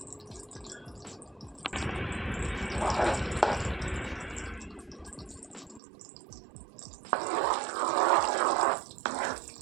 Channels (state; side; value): drops out; left; at 5.8 s